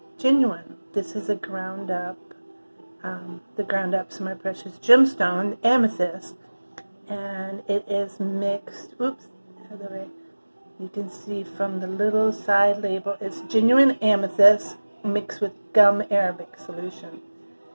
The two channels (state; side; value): inverted; both; correlation -1.00